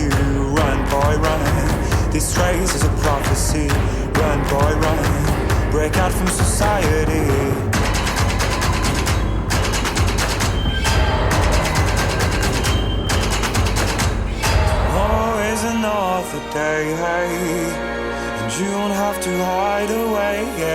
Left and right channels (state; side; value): identical; both; correlation 1.00